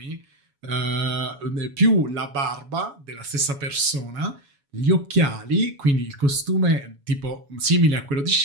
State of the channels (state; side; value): late; left; 7.1 ms